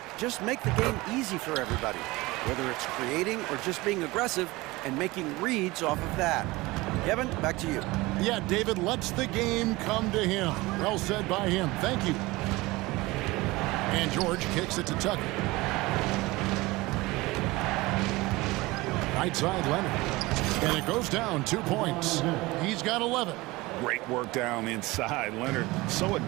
Just make the game easy for everybody, whether it's creating or just being aggressive and making reads off of that. Kevin, back to you. Yeah, David lets the game come to him. Well said by him. Thank you. And George kicks it to Tucker. Right side, Leonard. And it goes down 2 points. He's got 11. Great work down inside. Leonard so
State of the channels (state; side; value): quieter; left; 21.3 dB